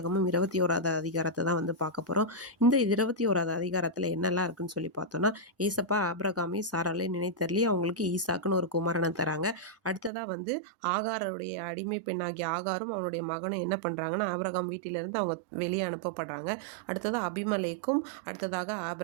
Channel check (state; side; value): drops out; left; at 10.1 s